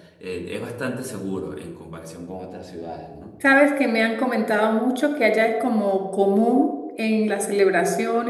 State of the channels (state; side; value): identical; both; correlation 1.00